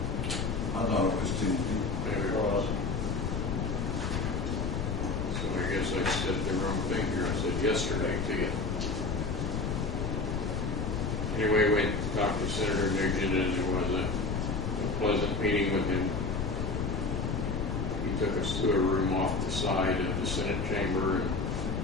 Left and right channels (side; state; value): left; noise; rumble, 1 dB below the sound